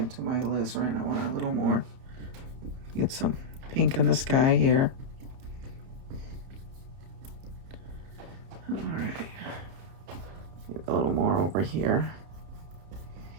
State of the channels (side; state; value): left; late; 30 ms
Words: my alizarin. I want a little more. Get some pink in the sky here. All right. Get a little more over here.